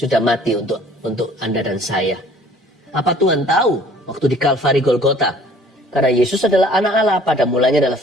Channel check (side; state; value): both; normal; correlation 0.53